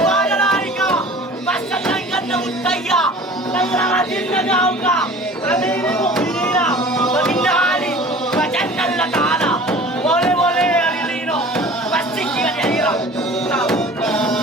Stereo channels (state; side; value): normal; both; correlation 0.43